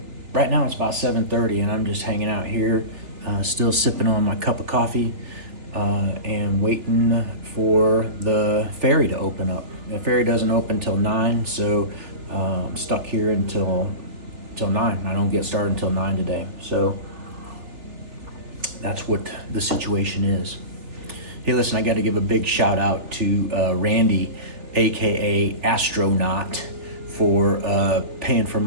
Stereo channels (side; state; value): left; late; 3.4 ms